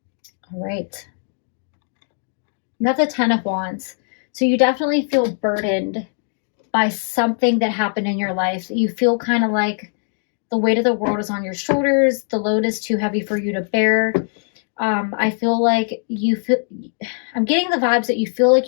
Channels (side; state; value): right; silent; 60 dB below the other